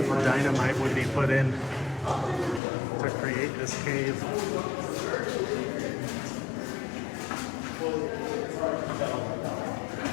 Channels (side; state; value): right; drops out; at 2.6 s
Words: dynamite would be put in to create this cave.